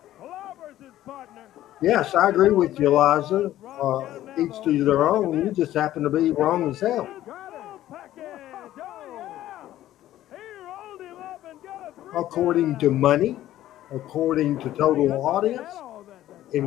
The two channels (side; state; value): right; quieter; 13.6 dB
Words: Clobbers his partner. Yes, I agree with you, Liza. Each to their own. You just happen to be wrong as hell. According to money, according to total audience,